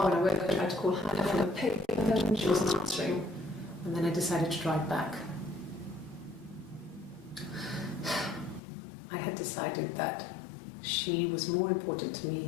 When I woke up, I tried to call Hannah on the paper, and she wasn't answering. And then I decided to drive back. I had decided that she was more important to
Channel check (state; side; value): drops out; right; at 8.6 s